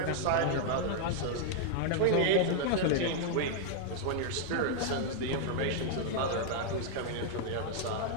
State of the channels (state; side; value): different; both; correlation 0.00